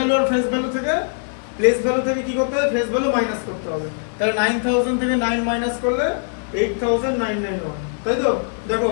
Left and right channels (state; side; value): silent; right; digital silence